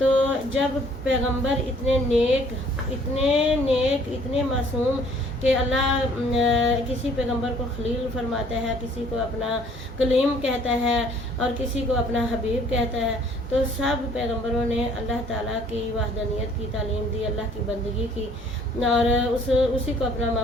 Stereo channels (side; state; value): both; normal; correlation 0.58